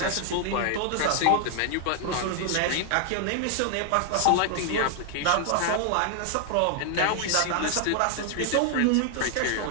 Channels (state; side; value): different; both; correlation 0.00